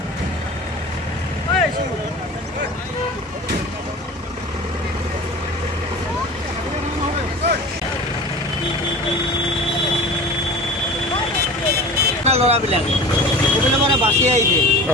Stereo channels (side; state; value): both; normal; correlation 0.37